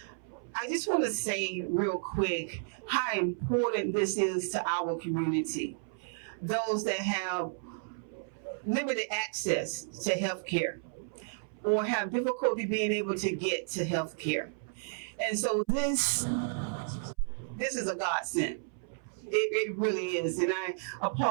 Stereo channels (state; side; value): silent; left; 56 dB below the other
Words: I just want to say real quick how important this is to our community. Those that have limited access to health care or have difficulty being able to get to health care. And so this is a godsend. It really is. And I